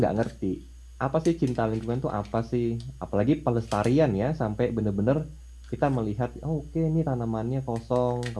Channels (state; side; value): identical; both; correlation 1.00